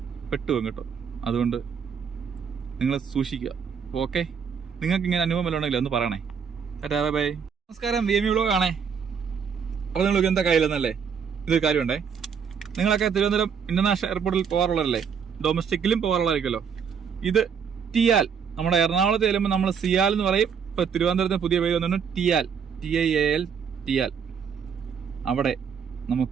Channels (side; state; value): left; quieter; 6.8 dB